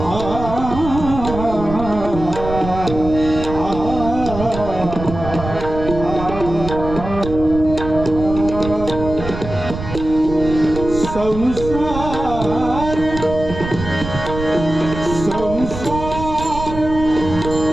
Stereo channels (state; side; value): noise; right; rumble, 8 dB below the sound